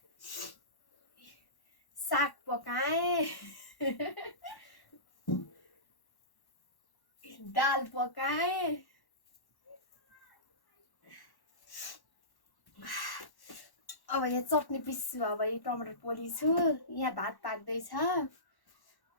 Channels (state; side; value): late; right; 1.1 ms